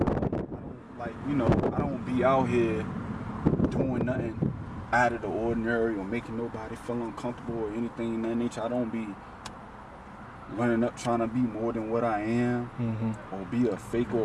like I don't be out here doing nothing out of the ordinary or making nobody feel uncomfortable or anything in that nature. I don't be running up trying to be more than what I am, or be a fake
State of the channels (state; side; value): identical; both; correlation 1.00